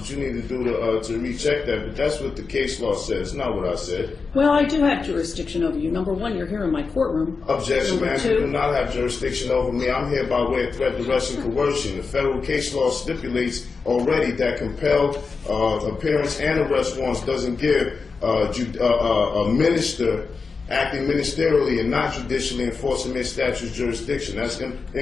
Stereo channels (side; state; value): right; quieter; 4.7 dB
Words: you need to do to recheck that, but that's what the case law says, not what I said. Well, I do have jurisdiction over you. Number one, you're here in my courtroom. Objection, Number ma'am. two, You do not have jurisdiction over me. I'm here by way of threat, duress, and coercion. The federal case law stipulates already that compelled appearance and arrest warrants doesn't give a minister acting ministerially and not judicially enforcing their statute's jurisdiction. That's